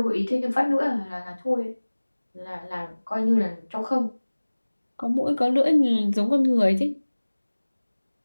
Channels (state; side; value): inverted; both; correlation -1.00